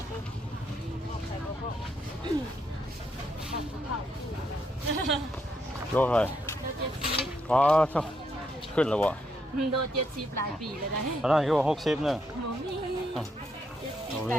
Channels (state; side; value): normal; both; correlation 0.77